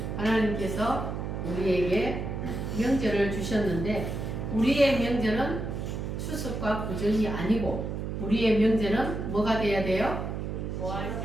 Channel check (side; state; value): right; noise; hum, 4 dB below the sound